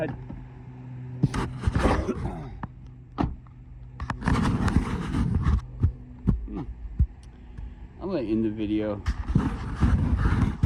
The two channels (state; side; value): identical; both; correlation 1.00